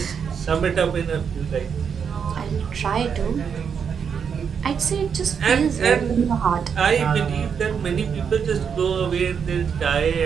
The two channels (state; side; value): quieter; left; 6.9 dB